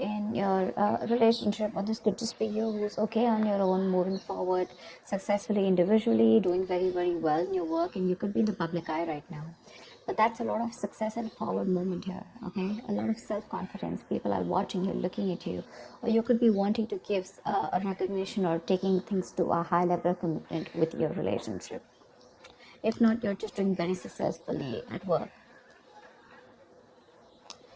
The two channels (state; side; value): identical; both; correlation 1.00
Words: your relationship, or this could just be you who's okay on your own, moving forward successfully individually, doing very, very well in your work, and you could be in the public eye right now. But that's a lot of success and forward movement here, okay? A lot of self confidence. People are watching you, looking at you, or you could be wanting to give a recognition or taking things to a high level of commitment with your relationship. If not, you're just doing very successfully at work.